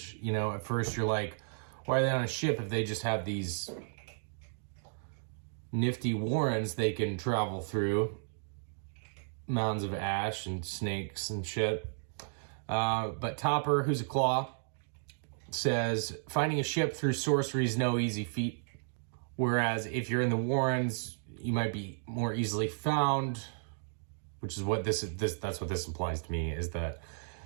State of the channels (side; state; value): left; silent; digital silence